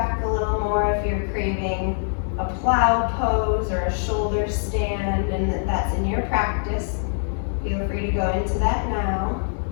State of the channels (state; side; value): silent; right; digital silence